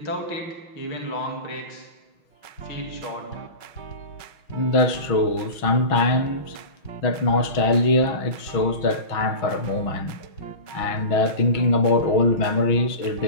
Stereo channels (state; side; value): late; right; 6.2 ms